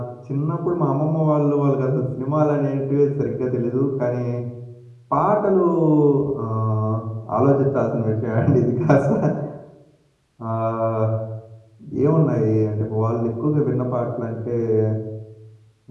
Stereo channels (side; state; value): both; identical; correlation 1.00